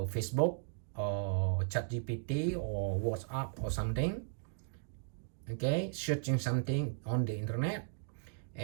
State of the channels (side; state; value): left; silent; digital silence